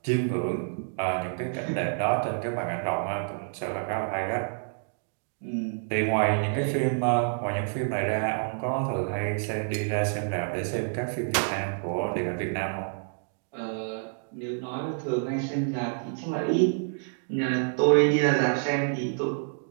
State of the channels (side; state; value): left; silent; digital silence